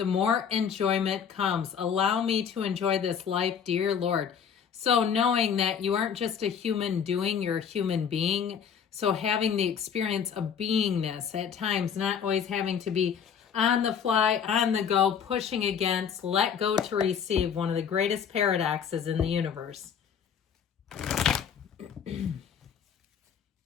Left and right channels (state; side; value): quieter; right; 7.5 dB